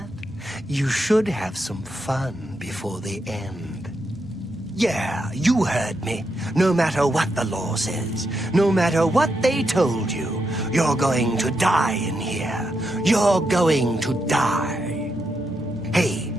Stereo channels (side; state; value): right; noise; rumble, 30 dB below the sound